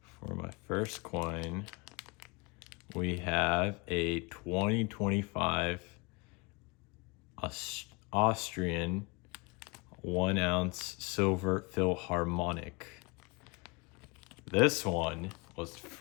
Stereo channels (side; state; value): right; quieter; 28.6 dB